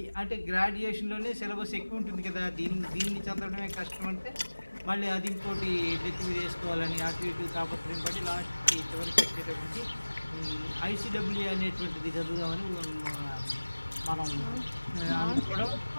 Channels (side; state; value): both; inverted; correlation -1.00